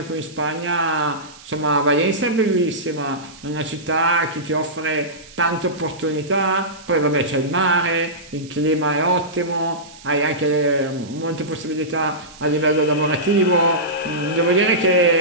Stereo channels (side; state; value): right; noise; hiss, 21 dB below the sound